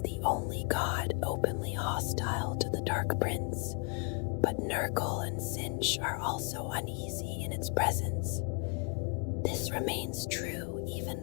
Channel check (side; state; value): right; quieter; 35.6 dB